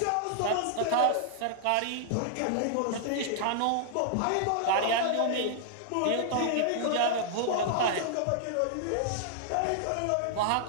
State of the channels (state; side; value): different; both; correlation -0.01